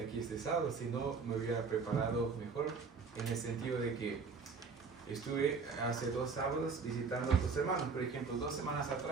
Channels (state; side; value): quieter; left; 5.0 dB